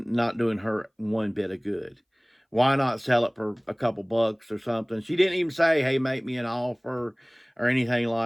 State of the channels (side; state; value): both; identical; correlation 1.00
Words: doing her one bit of good. Why not sell it for a couple bucks or something? She didn't even say, hey, make me an offer or anything